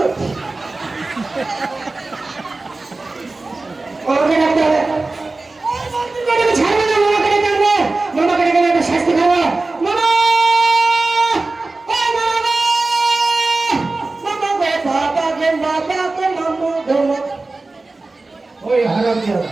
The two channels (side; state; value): left; quieter; 3.4 dB